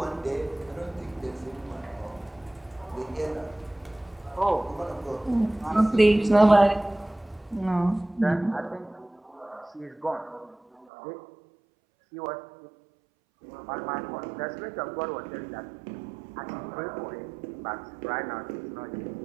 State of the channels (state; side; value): drops out; left; at 10.9 s